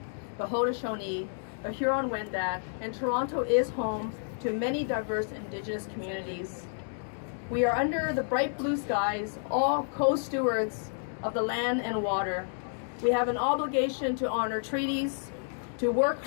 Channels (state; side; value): silent; right; digital silence